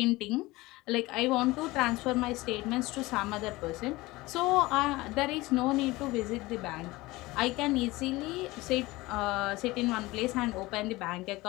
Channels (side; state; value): right; quieter; 20.5 dB